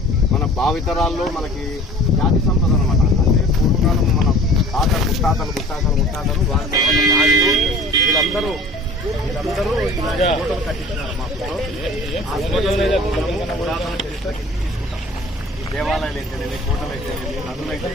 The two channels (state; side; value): normal; both; correlation 0.46